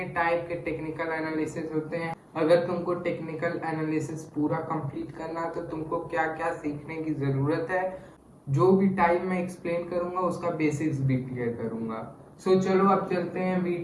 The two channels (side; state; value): both; identical; correlation 1.00